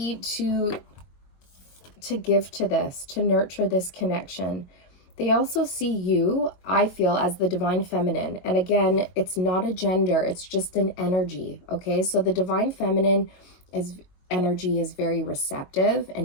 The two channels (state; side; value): late; right; 22 ms